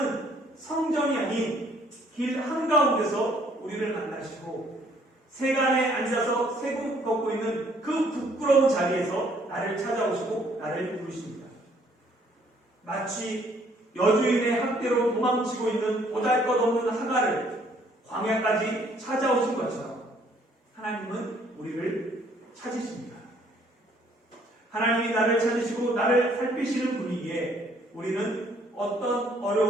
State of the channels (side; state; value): both; normal; correlation 0.63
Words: 성전이 아닌 길 한가운데서 우리를 만나시고 세간에 앉아서 세금 걷고 있는 그 부끄러운 자리에서 나를 찾아오시고 나를 부르십니다. 마치 여주인의 학대로 도망치고 있는 보잘것없는 하갈을 광야까지 찾아오신 것처럼 하나님은 우리를 찾으십니다. 하나님이 나를 찾으시고 나를 살피시는 분이기에 우리는 어떤